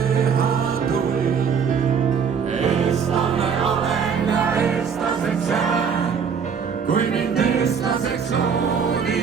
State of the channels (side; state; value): left; quieter; 6.6 dB